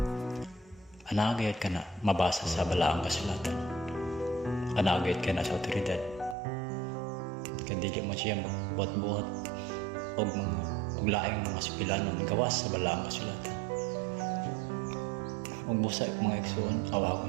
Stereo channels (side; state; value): left; drops out; at 6.4 s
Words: anagayod ka na mabasa sa balaang kasulatan. Anagayod ka na sa otoridad. Kadili mo siya magbuhat-buhat og laing mga sipilanon gawas sa balaang kasulatan. Ug busa mga igsoon,